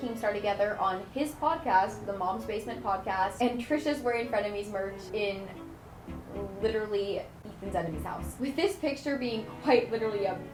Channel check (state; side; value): identical; both; correlation 1.00